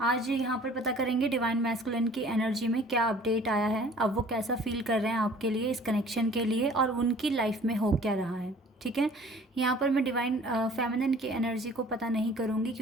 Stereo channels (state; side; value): normal; both; correlation 0.50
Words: आज यहाँ पर पता करेंगे डिवाइन मैस्कुलिन की एनर्जी में क्या अपडेट आया है, अब वो कैसा फील कर रहे हैं आपके लिए, इस कनेक्शन के लिए, और उनकी लाइफ में हो क्या रहा है। ठीक है, यहाँ पर मैं डिवाइन फेमिनिन की एनर्जी को पता नहीं करूँगी